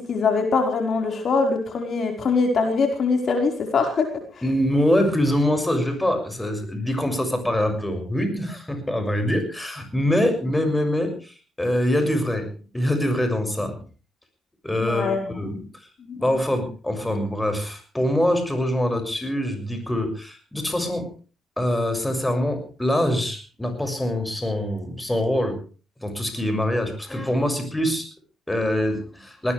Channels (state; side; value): normal; both; correlation 0.83